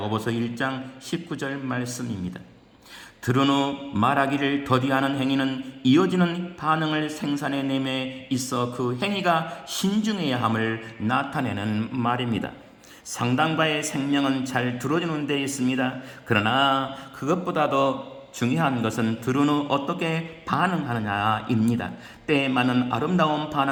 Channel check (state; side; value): identical; both; correlation 1.00